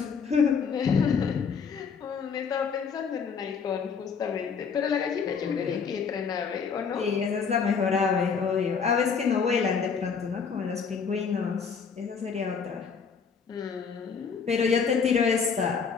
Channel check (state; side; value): quieter; right; 6.0 dB